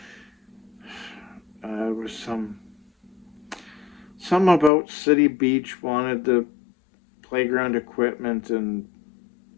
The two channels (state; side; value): drops out; right; at 4.7 s